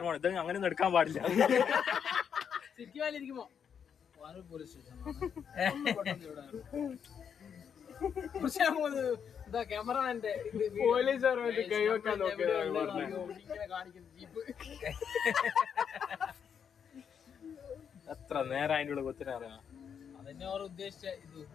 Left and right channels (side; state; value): right; quieter; 7.5 dB